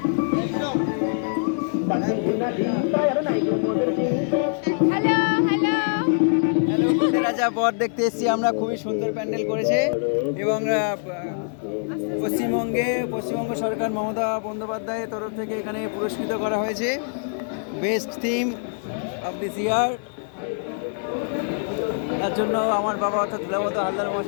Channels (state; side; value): silent; right; 63 dB below the other